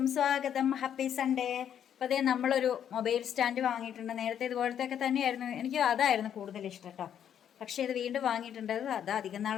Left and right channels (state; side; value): quieter; right; 9.3 dB